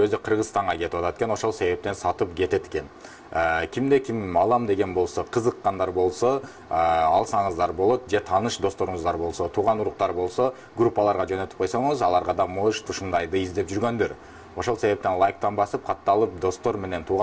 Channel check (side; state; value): both; identical; correlation 1.00